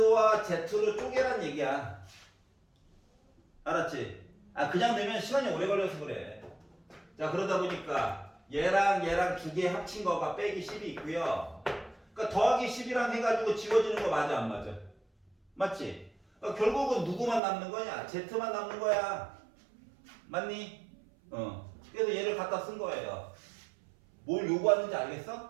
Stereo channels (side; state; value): left; drops out; at 17.4 s